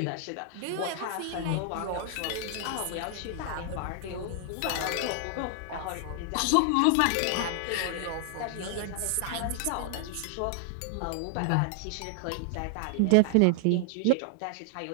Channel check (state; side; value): different; both; correlation 0.00